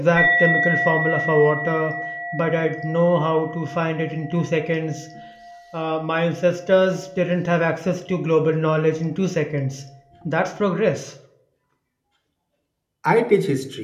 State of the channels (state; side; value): identical; both; correlation 1.00